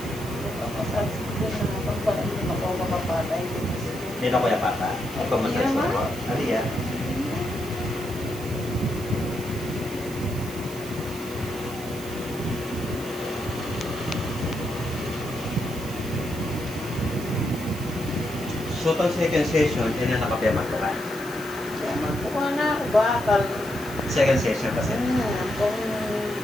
Massage ko na pagparin mo ako makapatay. Dito ko yung pata. Ito massage ko. Ali yan. So, itong second session, yun yung nakapiyaman ko ka. Kaya magkuha na ako bakal. Second session kasi. Kung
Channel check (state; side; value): noise; right; hiss, 15 dB below the sound